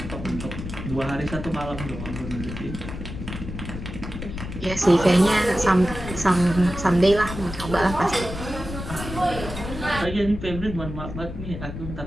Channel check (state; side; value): noise; left; rumble, 8 dB below the sound